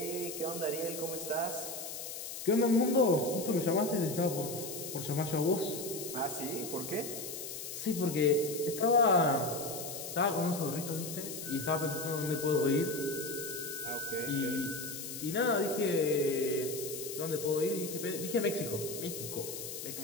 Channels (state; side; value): noise; left; hiss, 8 dB below the sound